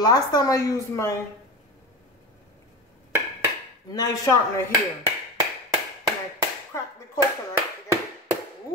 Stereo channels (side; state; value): both; normal; correlation 0.25